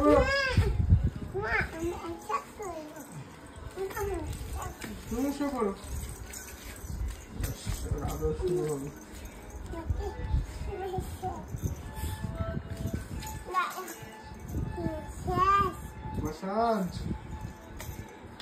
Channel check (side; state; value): both; identical; correlation 1.00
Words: তুমি শুয়ে পড়ো, আদর শুরু হবে। মাসাজ